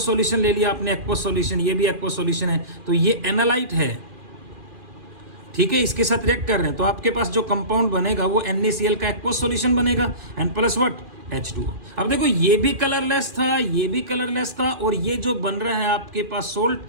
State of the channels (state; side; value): late; left; 2.4 ms